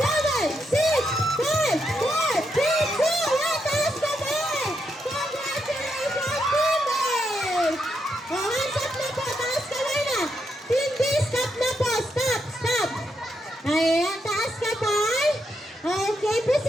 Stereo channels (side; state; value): both; normal; correlation 0.81